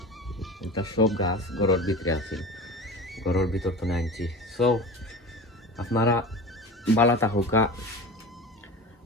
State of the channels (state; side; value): normal; both; correlation 0.32